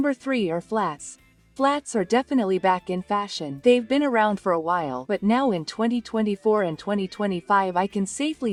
3 are flats. Flats are definitely back in fashion. They've been around for a while, but now in 2024 and 2025 I can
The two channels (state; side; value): identical; both; correlation 1.00